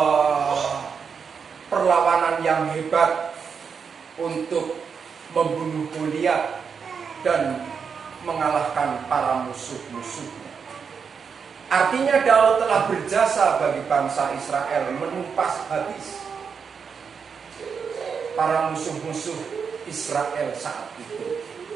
perlawanan yang hebat untuk membunuh Goliat dan mengalahkan para musuh-musuhnya. Artinya Daud telah berjasa bagi bangsa Israel, menumpas habis para musuh-musuh Israel saat itu.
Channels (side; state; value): left; quieter; 6.2 dB